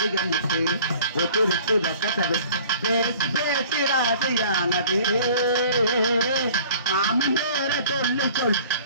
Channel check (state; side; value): inverted; both; correlation -0.50